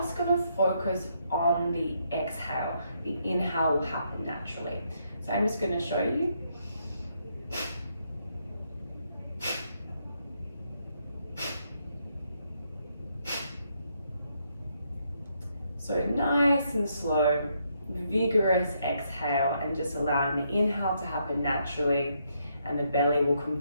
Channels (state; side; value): inverted; both; correlation -0.76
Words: going to focus on the exhale. The inhale will happen naturally. So I'm just going to show you. So nice and slow, vigorous exhale, and just allowing the inhale to happen naturally, and the belly will